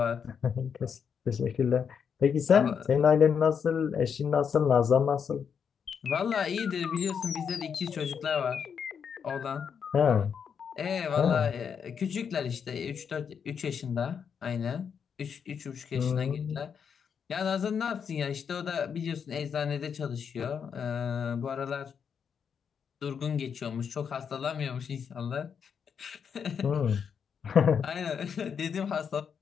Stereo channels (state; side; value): quieter; right; 7.0 dB